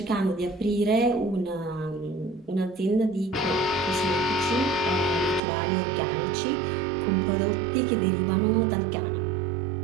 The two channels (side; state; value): left; drops out; at 5.4 s